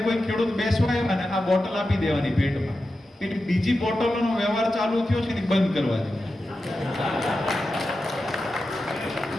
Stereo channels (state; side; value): normal; both; correlation 0.91